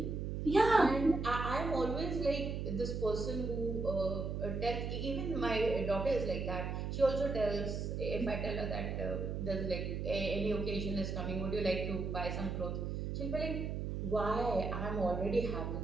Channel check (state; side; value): noise; right; hum, 3 dB below the sound